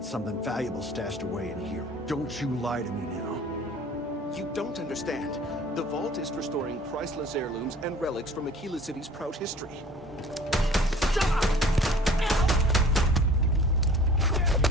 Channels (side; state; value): both; normal; correlation 0.48